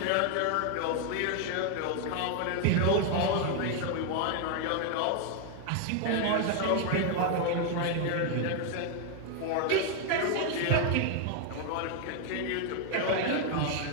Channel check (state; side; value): different; both; correlation 0.00